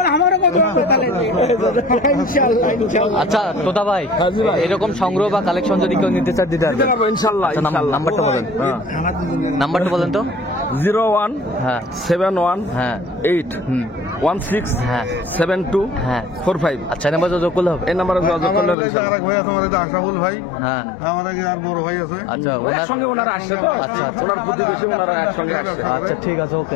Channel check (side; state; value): right; drops out; at 18.8 s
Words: আচ্ছা তোতা ভাই এরকম সংগ্রহ বা কালেকশন যদি কেউ নিতে চায় দিতে পারবেন? ইনশাআল্লাহ। আচ্ছা, নাম্বারটা বলেন। নাম্বারটা বলেন তো। 01 হ্যাঁ 71 হ্যাঁ 8 হুম 16 হ্যাঁ 72 হ্যাঁ। 45। আচ্ছা নাম্বার যোগ করলে হবে? এই নাম্বারে যোগাযোগ করলে হবে ইনশাআল্লাহ। আরেক ভাই আছে আমাদের আশাফুল ভাই, হ্যাঁ আমার আগে আর বড় ভাই আছে। আচ্ছা ওনার একসঙ্গে ওনারা আসছে তো। আচ্ছা আচ্ছা ওনার প্রতিবেশী, ওনারা একসঙ্গে আসছে। আচ্ছা ঠিক আছে, ওকে